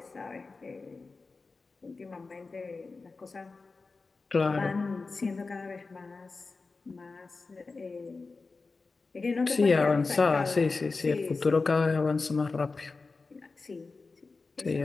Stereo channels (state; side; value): quieter; right; 4.0 dB